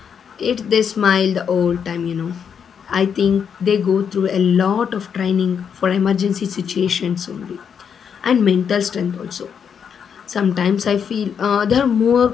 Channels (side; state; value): right; quieter; 7.3 dB